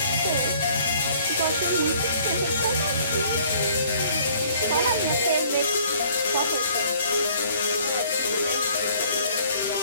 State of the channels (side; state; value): both; inverted; correlation -0.57